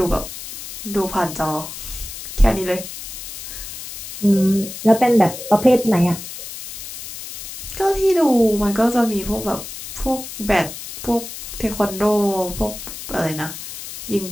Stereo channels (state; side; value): noise; left; hiss, 11 dB below the sound